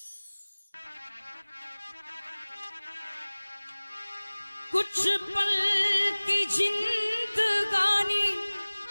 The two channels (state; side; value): inverted; both; correlation -1.00